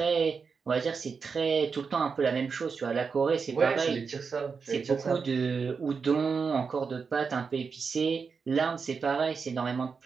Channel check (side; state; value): left; quieter; 5.4 dB